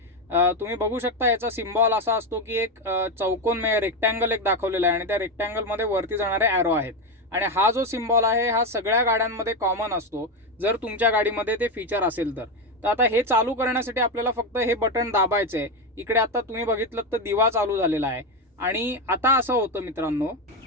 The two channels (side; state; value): both; normal; correlation 0.12